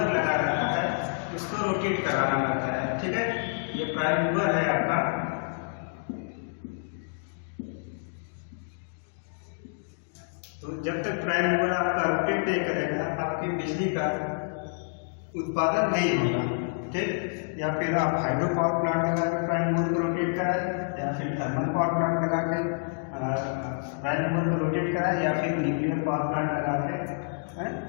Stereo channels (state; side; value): silent; right; digital silence